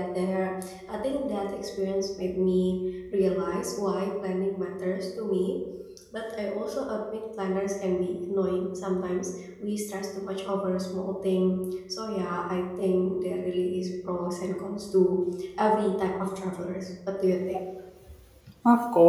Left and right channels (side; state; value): both; identical; correlation 1.00